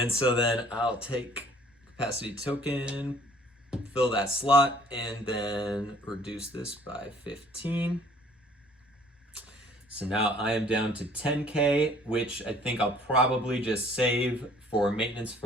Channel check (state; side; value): normal; both; correlation 0.55